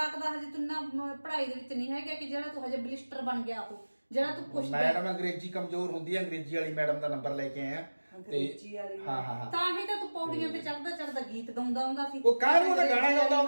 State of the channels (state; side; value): inverted; both; correlation -1.00